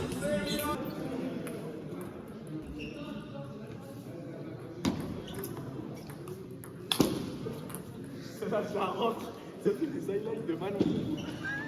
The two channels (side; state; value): both; identical; correlation 1.00